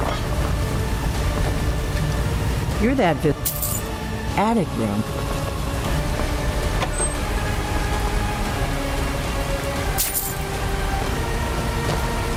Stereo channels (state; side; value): identical; both; correlation 1.00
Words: You're that attic room.